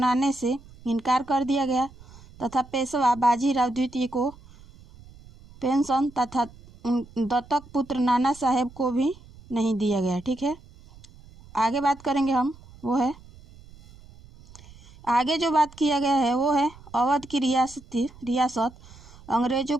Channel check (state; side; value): noise; right; rumble, 22 dB below the sound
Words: से इनकार कर दिया गया तथा पेशवा बाजीराव द्वितीय को पेंशन तथा दत्तक पुत्र नाना साहेब को भी नहीं दिया गया। ठीक है, आगे बात करेंगे हम वो है आगे जो बात किया गया है वो है अवध की रियासत अंग्रेजों